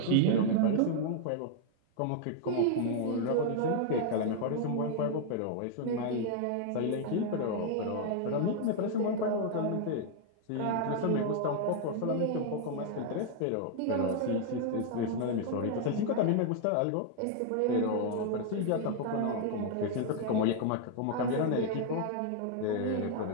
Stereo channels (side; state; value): both; different; correlation 0.00